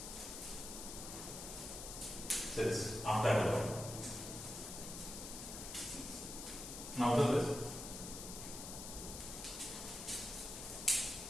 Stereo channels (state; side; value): noise; left; hiss, 8 dB below the sound